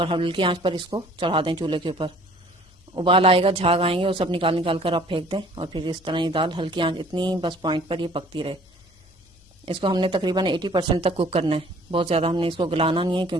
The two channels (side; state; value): both; normal; correlation 0.53